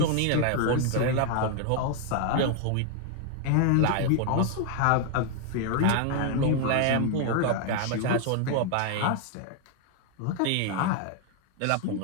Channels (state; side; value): different; both; correlation 0.01